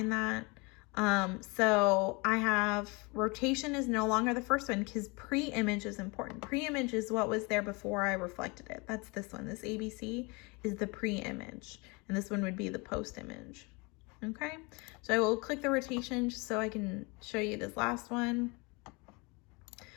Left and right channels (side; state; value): right; quieter; 28.2 dB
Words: that. So I have rotation is no longer the first one because pre-image is important. Pre-image is what was there before I reflected it. That's this one. This ABC is the pre-image, and this one would be the post-image. Okay, so I will click the rotation just so I can show you this last one.